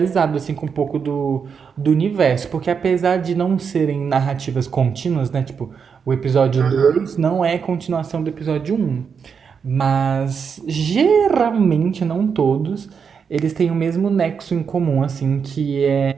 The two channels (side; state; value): left; quieter; 6.4 dB